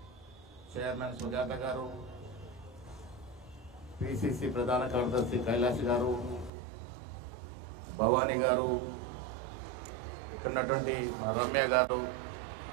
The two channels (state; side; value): drops out; left; at 6.5 s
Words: చైర్మన్ సుజాత గారు, పిసిసి ప్రధాన కార్యదర్శి కైలాష్ గారు, భవానీ గారు, ఇక్కడ ఉన్నటువంటి రమ్య గారు,